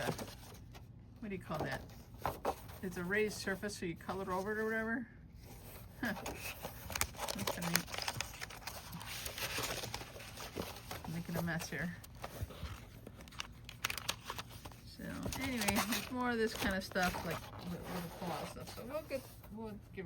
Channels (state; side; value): identical; both; correlation 1.00